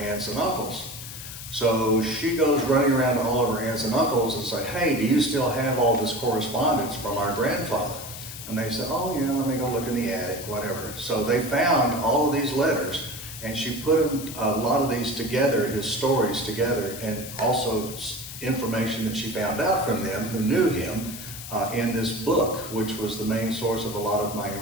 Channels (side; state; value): left; noise; hiss, 11 dB below the sound